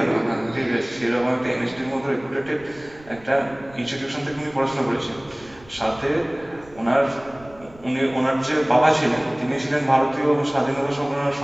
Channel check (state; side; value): noise; right; rumble, 23 dB below the sound